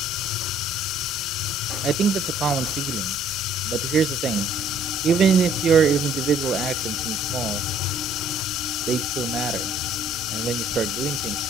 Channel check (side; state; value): both; normal; correlation 0.59